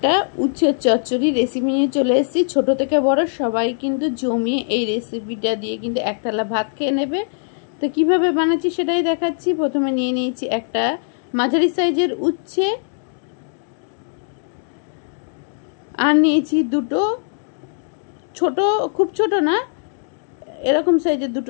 উচ্ছের চচ্চড়ি রেসিপি নিয়ে চলে এসেছি। ছোট থেকে বড় সবাই কিন্তু জমিয়ে এই রেসিপিটা দিয়ে কিন্তু এক থালা ভাত খেয়ে নেবে। তো কিভাবে বানাচ্ছি সেটাই দেখাচ্ছি। প্রথমে নিয়ে নিয়েছি একটা মাঝারি সাইজের উচ্ছে, আর নিয়েছি দুটো ছোট, খুব ছোট না, এরকম সাইজের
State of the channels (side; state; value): right; silent; digital silence